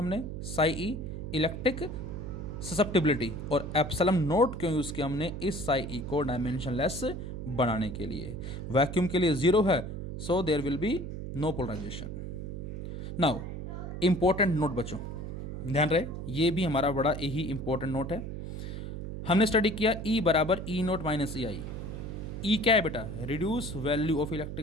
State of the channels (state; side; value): noise; right; hum, 7 dB below the sound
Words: साई ई इलेक्ट्रिक ससेप्टिबिलिटी, और एप्सिलॉन नोट क्यों यूज़ किया हमने, इस साई ई को डायमेंशनलेस बनाने के लिए। वैक्यूम के लिए 0 है, so there will be no polarisation. Now important note बच्चों, ध्यान रहे, ये भी हमारा बड़ा यही इंपॉर्टेंट नोट है। हमने स्टडी किया E बराबर ई नोट माइनस ई आई। ई क्या है बेटा, reduce value of